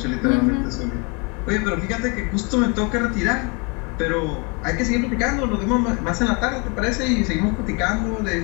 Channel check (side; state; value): right; quieter; 31.9 dB